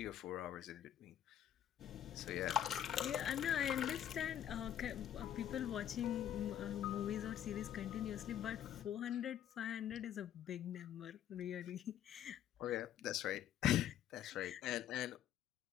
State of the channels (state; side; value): quieter; right; 10.6 dB